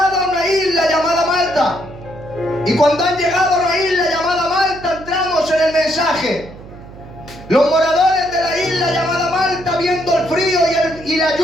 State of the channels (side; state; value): right; noise; hum, 17 dB below the sound